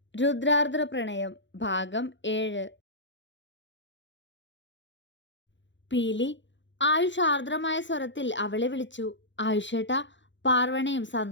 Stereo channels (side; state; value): right; late; 0.54 ms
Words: രുദ്രാർദ്ര പ്രണയം ഭാഗം 7. പീലി ആയുഷ് ആർദ്രമായ സ്വരത്തിൽ അവളെ വിളിച്ചു. ആയുഷേട്ടാ. പാർവണയും